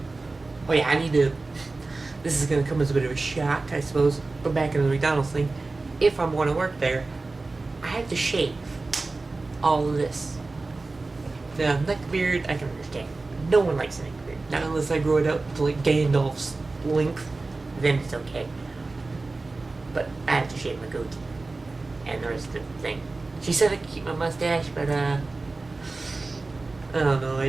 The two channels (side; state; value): left; quieter; 3.5 dB